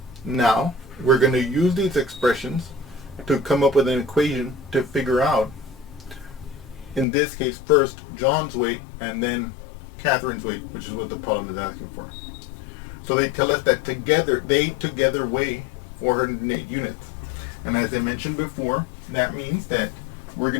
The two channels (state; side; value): drops out; right; at 7.1 s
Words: Now, we're going to use these expressions to come up with an equation to figure out, in this case, first John's weight and then Catherine's weight, which is what the problem is asking for. So they tell us that they together weigh 408 units. And as I mentioned before, that means that we're